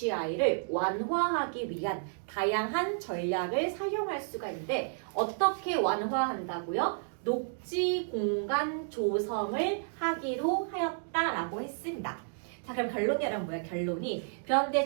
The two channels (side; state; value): left; silent; digital silence